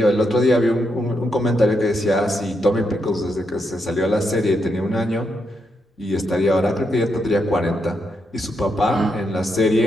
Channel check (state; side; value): normal; both; correlation 0.81